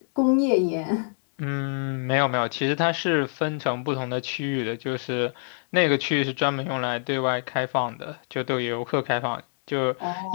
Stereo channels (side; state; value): right; silent; digital silence